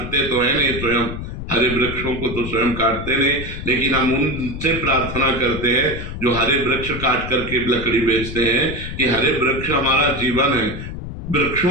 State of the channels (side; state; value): left; noise; rumble, 8 dB below the sound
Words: तो है नहीं स्वयं, हरे वृक्षों को तो स्वयं काटते नहीं। लेकिन हम उनसे प्रार्थना करते हैं जो हरे वृक्ष काट करके लकड़ी बेचते हैं, कि हरे वृक्ष हमारा जीवन है।